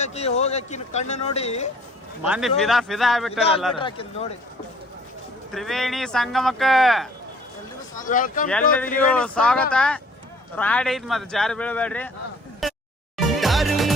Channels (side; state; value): both; normal; correlation 0.55